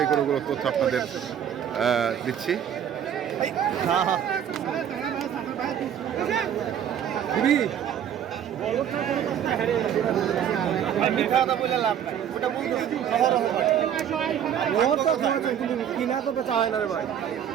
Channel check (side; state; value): left; quieter; 9.4 dB